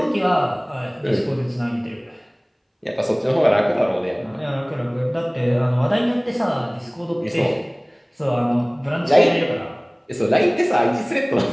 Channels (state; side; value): identical; both; correlation 1.00